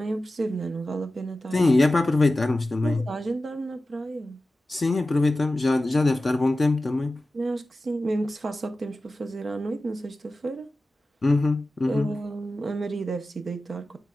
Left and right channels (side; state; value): both; normal; correlation 0.94